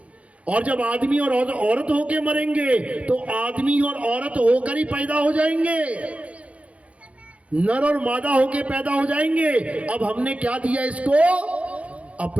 और जब आदमी और औरत होके मरेंगे तो आदमी और औरत होकर ही पैदा हो जाएंगे। नर और मादा होके पैदा हो जाएंगे। अब हमने क्या दिया इसको?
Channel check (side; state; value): left; late; 0.064 ms